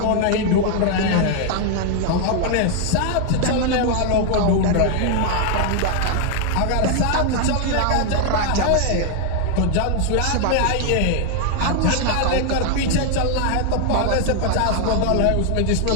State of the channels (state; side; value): different; both; correlation 0.00